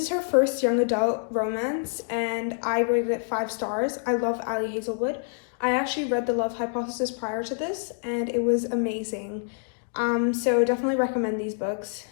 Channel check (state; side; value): silent; right; 60 dB below the other